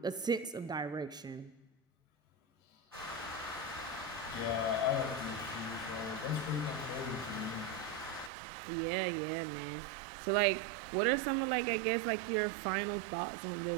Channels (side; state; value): left; drops out; at 8.3 s